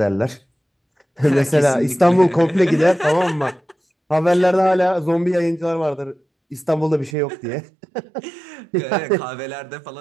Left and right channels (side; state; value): left; drops out; at 7.2 s